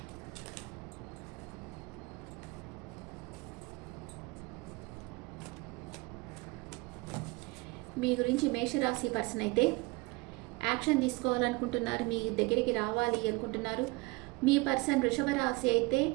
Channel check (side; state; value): left; quieter; 24.8 dB